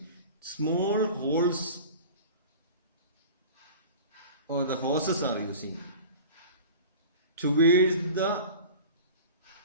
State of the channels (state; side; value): inverted; both; correlation -0.38